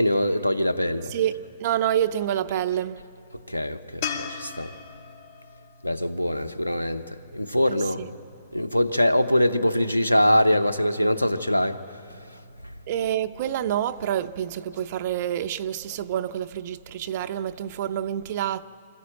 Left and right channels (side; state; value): both; inverted; correlation -0.80